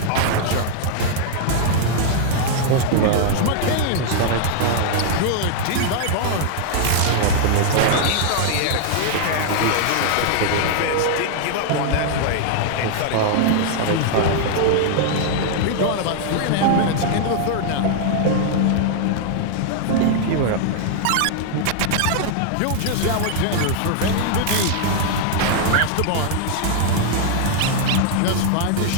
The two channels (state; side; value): different; both; correlation -0.01